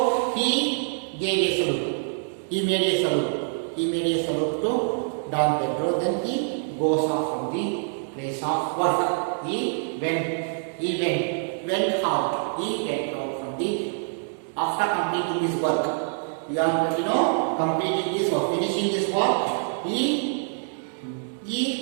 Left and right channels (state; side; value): silent; left; digital silence